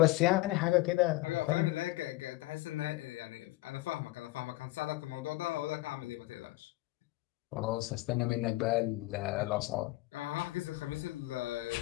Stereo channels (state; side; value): quieter; right; 19.2 dB